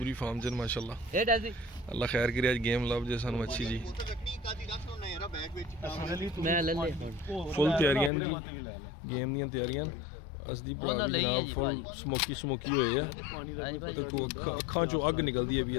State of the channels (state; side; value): drops out; right; at 8.1 s